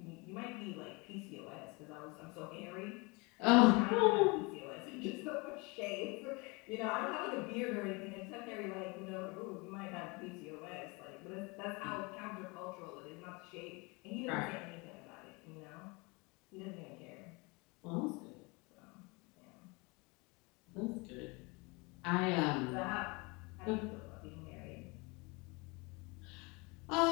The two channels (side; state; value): right; quieter; 27.6 dB